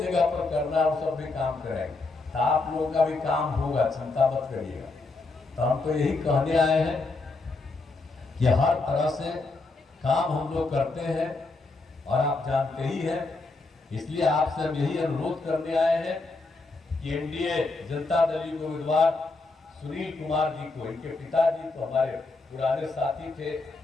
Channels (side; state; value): right; quieter; 3.5 dB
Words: जगह पर करना है वो सब भी काम करेंगे, तो आप लोगों का भी काम होगा, चिंता मत करिएगा। तो हम तो यही कहने आए हैं कि हर तरह से काम हम लोग करते हैं, और आप जानते ही हैं, इसलिए आपसे हम यही अनुरोध करने आए हैं कि एनडीए जनता दल के उम्मीदवार सुनील कुमार जी को, इनके पिताजी तो हमारे पुराने साथी थे,